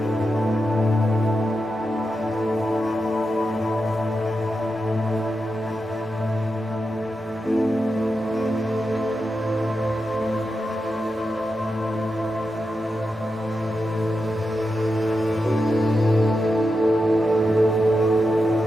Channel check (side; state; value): both; normal; correlation 0.88